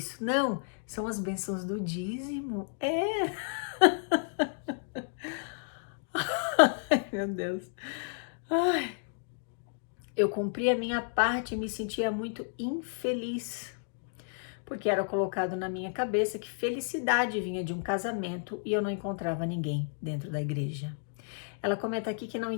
Não, são as bênçãos do dízimo. Ai, meu Deus. Ai. Eu cumpri a minha parte e me sentia muito infeliz, porque era colocado na minha cabeça que felicidade vinha de um casamento e eu não encontrava ninguém dentro da igreja. Ela comenta aqui que não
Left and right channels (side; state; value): right; silent; digital silence